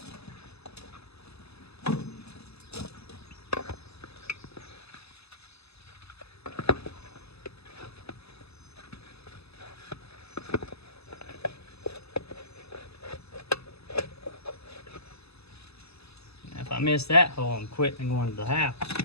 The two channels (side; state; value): right; late; 0.79 ms